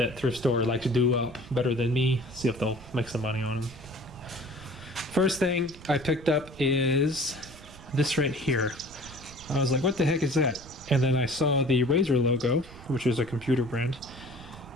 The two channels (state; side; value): noise; right; rumble, 19 dB below the sound